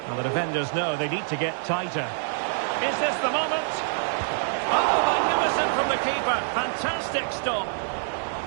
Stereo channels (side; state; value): left; silent; digital silence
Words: Well, the defenders know they need to get tighter. Is this the moment? Oh, magnificent from the keeper. Fantastic stop.